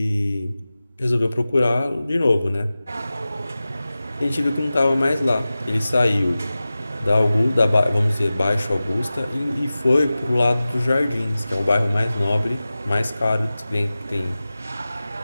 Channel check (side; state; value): both; inverted; correlation -0.96